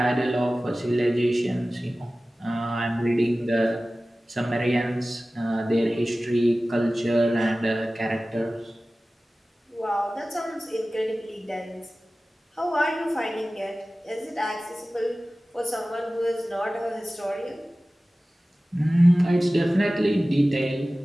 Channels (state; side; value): normal; both; correlation 0.97